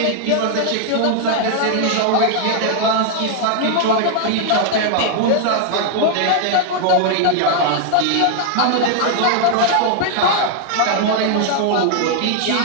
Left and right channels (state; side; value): different; both; correlation 0.00